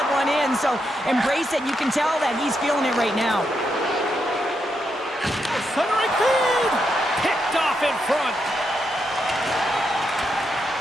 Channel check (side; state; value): both; normal; correlation 0.82